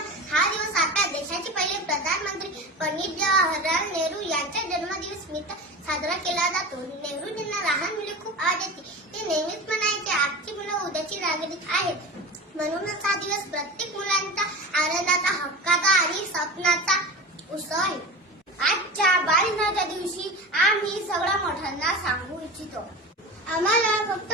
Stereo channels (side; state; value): both; normal; correlation 0.30